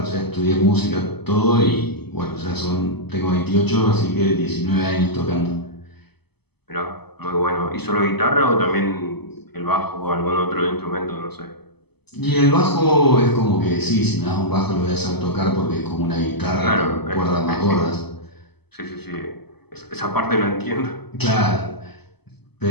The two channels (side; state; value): right; late; 0.98 ms